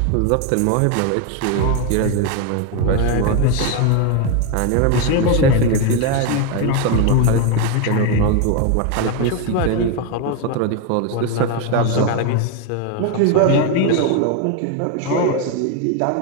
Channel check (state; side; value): different; both; correlation 0.02